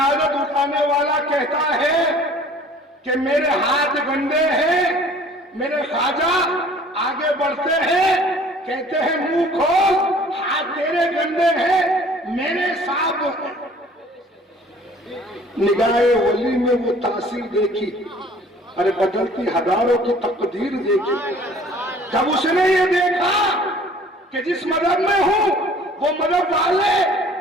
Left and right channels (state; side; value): normal; both; correlation 0.51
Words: اٹھانے والا کہتا ہے کہ میرے ہاتھ گندے ہیں۔ میرے خواجہ آگے بڑھتے ہیں، کہتے ہیں منہ کھول، ہاتھ تیرے گندے ہیں، میرے صاحب۔ نگاہ ولی میں وہ تاثیر دیکھی، ارے بدلتی ہزاروں کی تقدیر دیکھی۔ جب اس نے یہ دیکھا کہ جس مذہب میں ہوں وہ مذہب والے